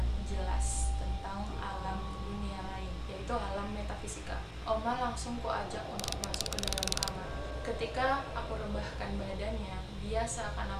jelas tentang alam dunia lain, yaitu alam metafisika. Oma langsung kuajak untuk masuk ke dalam kamar. Ketika aku rebahkan badannya, dia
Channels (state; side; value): identical; both; correlation 1.00